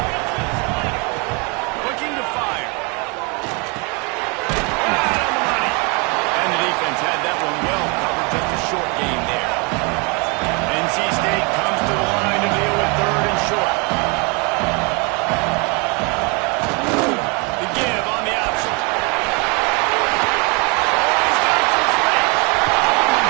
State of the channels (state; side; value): quieter; left; 31.2 dB